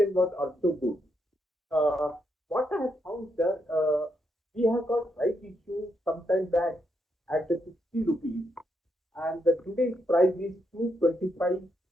was also good. What I have found, sir, we have got right issue sometime back at the 60 rupees, and the today's price is 225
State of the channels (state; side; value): normal; both; correlation 0.79